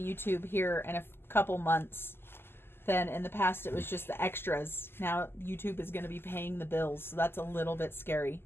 here in a couple months than in the past. It was just the extras. Now YouTube is going to be paying the bills, so that's a little bit scary.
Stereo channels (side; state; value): right; late; 0.11 ms